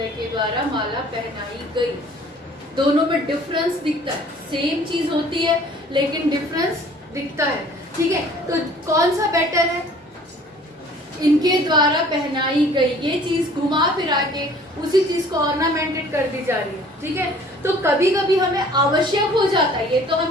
के द्वारा माला पहनाई गई। दोनों में डिफरेंस दिखता है, सेम चीज होती है लेकिन डिफरेंस दिखता है। ठीक है, तो कौन सा बेटर है? इनके द्वारा पहनाई गई, ये चीज घुमा फिरा के उसी चीज को ऑर्नामेंटेड कर दी जा रही है। ठीक है, तो कभी कभी हमें आवश्यक हो जाता है, ये तो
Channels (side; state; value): both; normal; correlation 0.52